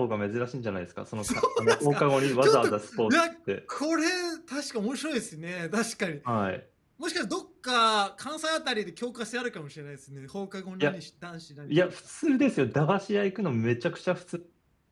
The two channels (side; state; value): both; identical; correlation 1.00